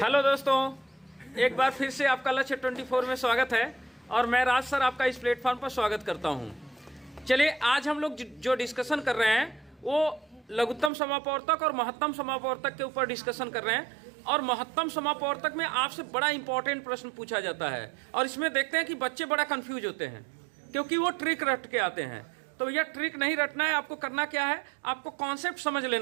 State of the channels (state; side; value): drops out; left; at 10.9 s